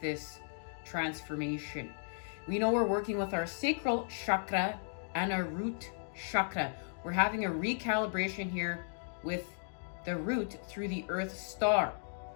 this transformation. We know we're working with our sacral chakra and our root chakra. We're having a recalibration here with the root through the Earth star.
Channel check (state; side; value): silent; right; digital silence